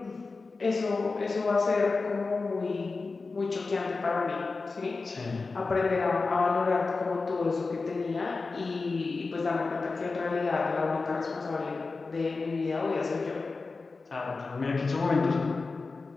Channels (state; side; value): quieter; right; 4.0 dB